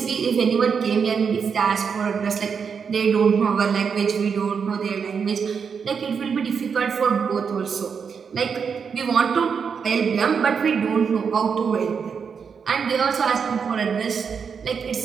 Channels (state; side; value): quieter; left; 6.3 dB